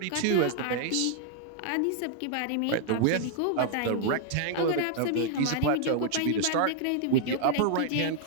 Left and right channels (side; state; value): both; different; correlation -0.01